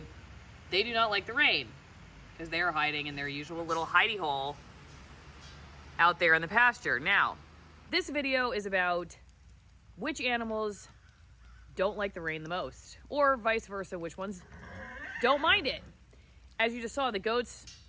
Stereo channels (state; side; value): identical; both; correlation 1.00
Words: they do not like the rain because they are hiding in their usual little hidey hole out there in the pasture. Now, this video is about which animals don't like the rain the most, or vice versa, which ones don't mind it. As you just saw, the goats,